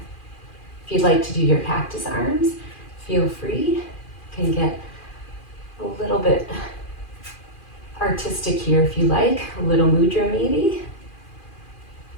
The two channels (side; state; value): right; late; 2.4 ms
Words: If you'd like to do your cactus arms, feel free. You can get a little bit artistic here if you like, a little mudra maybe.